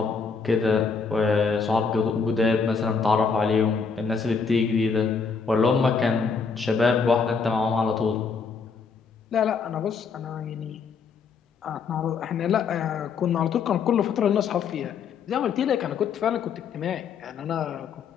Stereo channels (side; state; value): right; quieter; 5.4 dB